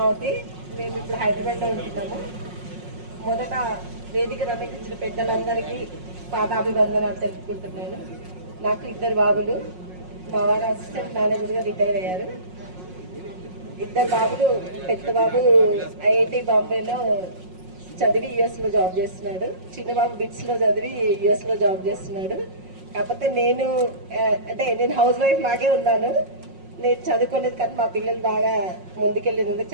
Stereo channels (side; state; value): left; late; 5.5 ms